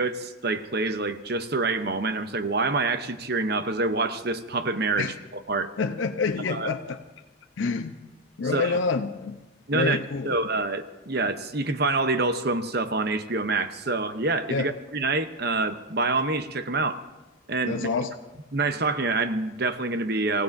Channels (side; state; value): both; normal; correlation 0.07